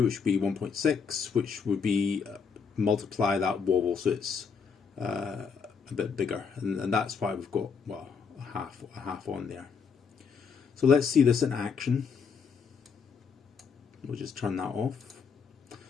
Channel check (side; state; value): right; quieter; 5.9 dB